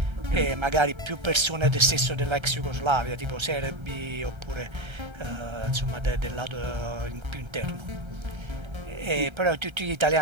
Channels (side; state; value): left; late; 1.3 ms